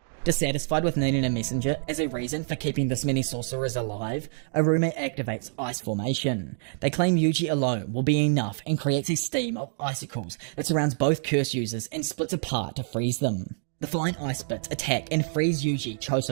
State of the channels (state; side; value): silent; left; digital silence